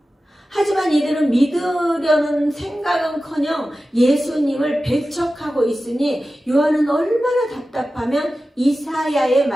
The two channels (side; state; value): both; normal; correlation 0.94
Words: 하지만 이들은 믿으려는 생각은커녕 예수님을 배척하고 있으니 요한은 얼마나 답답하면 이사야의